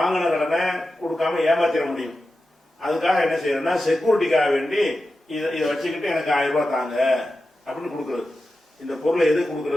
கடனை கொடுக்காம ஏமாத்திட முடியும். அதுக்காக என்ன செய்யறேன்னா, செக்யூரிட்டிக்காக வேண்டி இதை வச்சுக்கிட்டு எனக்கு 1000 ரூபாய் தாங்க அப்படின்னு கொடுக்கறது. இந்த பொருளை எது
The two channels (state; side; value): normal; both; correlation 0.92